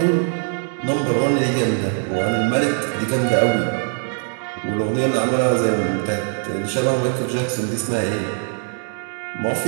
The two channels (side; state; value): left; silent; 65 dB below the other